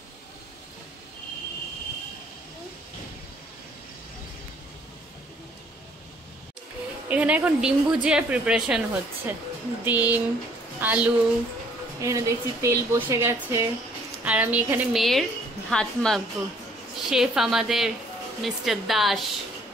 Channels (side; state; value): both; normal; correlation 0.61